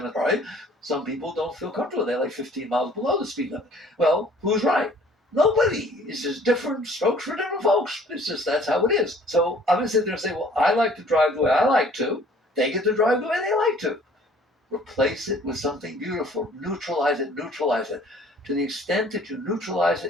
right? Some people don't feel comfortable. They like 15 miles below the speed limit. Well, who's right? Nobody. It's just different strokes for different folks. It's just that's how it is. So I'm going to sit there and say, well, I like to drive the way I like to. They get to drive the way they like to. Replace it with something beautiful. Neutralize it. To the extent that you neutralize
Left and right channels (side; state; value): both; normal; correlation 0.54